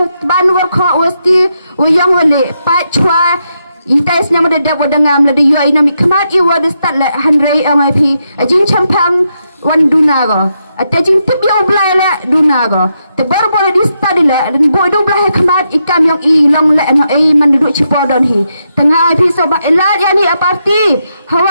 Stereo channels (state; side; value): inverted; both; correlation -0.83